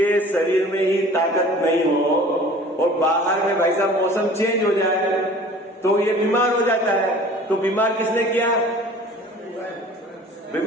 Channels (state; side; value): normal; both; correlation 0.46